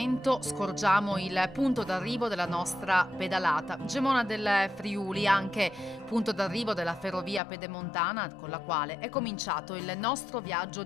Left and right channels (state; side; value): drops out; right; at 7.4 s